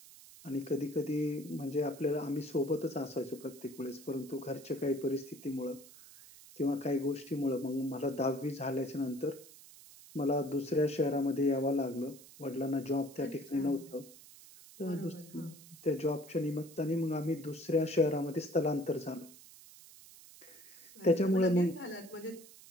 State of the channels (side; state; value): right; noise; hiss, 20 dB below the sound